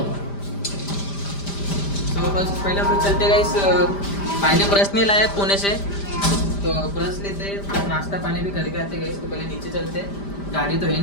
तो बस पहले हम लोग चलते गाइस. भाई ने ब्रश नहीं लाया पुणे से, तो ब्रश लेते नाश्ता पानी भी करके आते गाइस. तो पहले नीचे चलते. गाड़ी तो है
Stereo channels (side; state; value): right; late; 5.0 ms